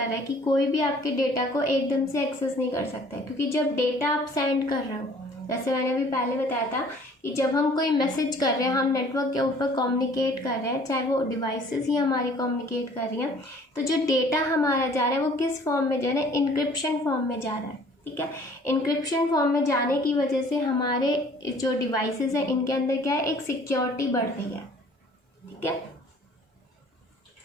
है कि कोई भी आपके डेटा को एकदम से एक्सेस नहीं कर सकता है, क्योंकि जब डेटा आप सेंड कर रहे हो, जैसे मैंने अभी पहले बताया था कि जब हम कोई मैसेज कर रहे हैं, हम नेटवर्क के ऊपर कम्युनिकेट कर रहे हैं, चाहे वो डिवाइसेस ही हमारी कम्युनिकेट कर रही हैं, तो जो डेटा हमारा जा रहा है वो किस फॉर्म में जा रहा है, इनक्रिप्शन फॉर्म में जा रहा है। ठीक है, इनक्रिप्शन फॉर्म में जाने की वजह से हमारे जो डिवाइसेस हैं इनके अंदर क्या है, एक सिक्योरिटी बढ़ रही है। ठीक है,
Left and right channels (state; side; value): normal; both; correlation 0.54